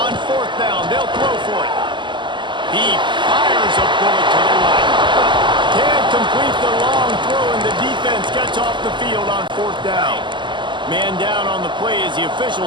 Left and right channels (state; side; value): late; left; 0.23 ms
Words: On fourth down, they'll throw for it. He fires a bullet to the right. Can't complete the long throw, and the defense gets off the field on fourth down. Man down on the play as the